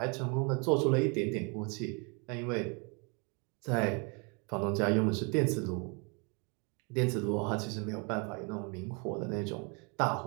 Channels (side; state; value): left; quieter; 33.1 dB